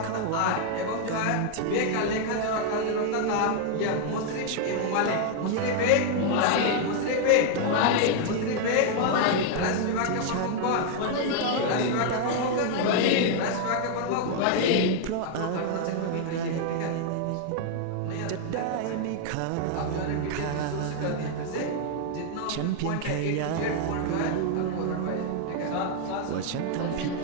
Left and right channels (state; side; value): different; both; correlation 0.00